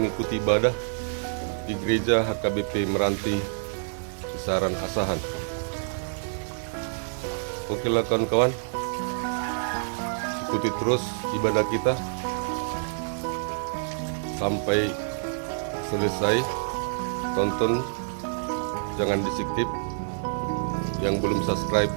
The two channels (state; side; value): silent; left; digital silence